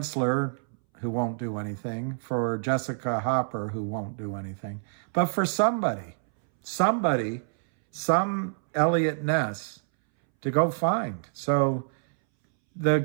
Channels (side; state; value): left; silent; 60 dB below the other